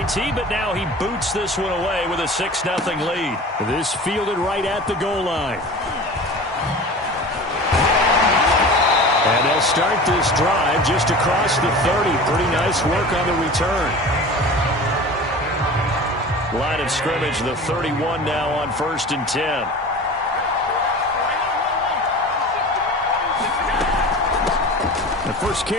but now he boots this one away with a 6-0 lead. This fielded right at the goal line. And they'll start this drive just across the 30. Pretty nice work on the return. Line of scrimmage, the 31 now on 1st and 10. The first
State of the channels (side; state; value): both; normal; correlation 0.36